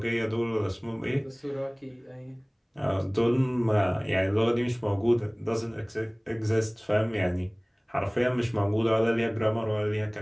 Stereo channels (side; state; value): both; identical; correlation 1.00